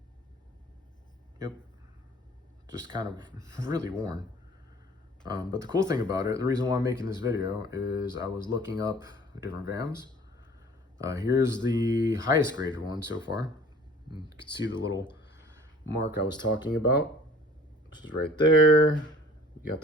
Yep. Just kind of really worn. But the cool thing about it, the reason why I'm making this video is I was looking up different VAMs. Here's the highest graded one so far. You can see the little mark I was talking about, which is right there. You got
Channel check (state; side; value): normal; both; correlation 0.49